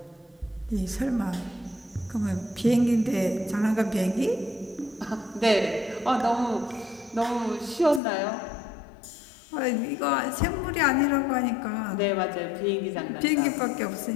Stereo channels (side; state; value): right; drops out; at 8.0 s